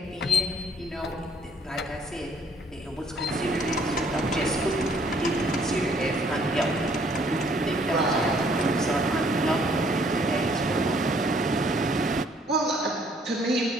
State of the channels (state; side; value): normal; both; correlation 0.63